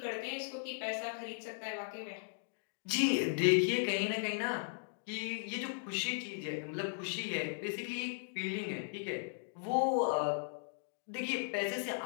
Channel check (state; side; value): silent; right; digital silence